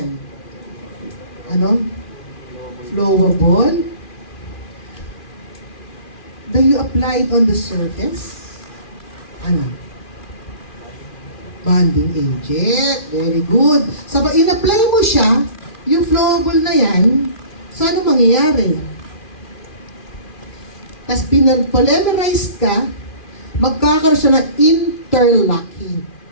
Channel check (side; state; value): right; late; 2.4 ms